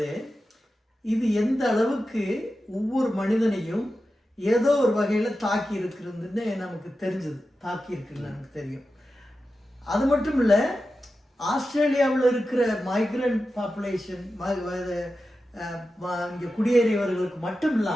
இது எந்த அளவுக்கு ஒவ்வொரு மனிதனையும் ஏதோ ஒரு வகையில தாக்கி இருக்கிறதுன்னு நமக்கு தெரிஞ்சது, தாக்கி இருக்குன்னு நமக்கு தெரியும். அது மட்டும் இல்ல, ஆஸ்திரேலியாவில் இருக்கிற மைக்ரண்ட் பாப்புலேஷன் இங்கே குடியேறியவர்களுக்கு மட்டும்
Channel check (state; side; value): normal; both; correlation 0.92